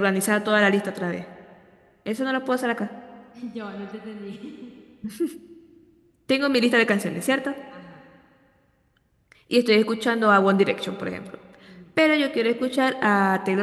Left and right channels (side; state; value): both; identical; correlation 1.00